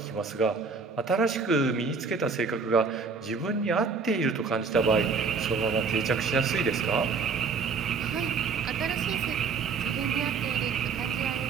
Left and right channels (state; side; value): quieter; left; 5.0 dB